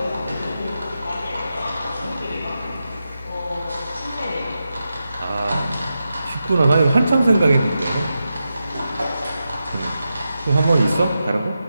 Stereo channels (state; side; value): inverted; both; correlation -0.89